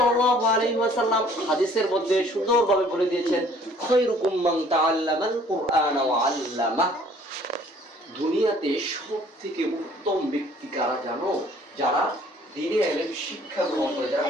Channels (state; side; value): normal; both; correlation 0.56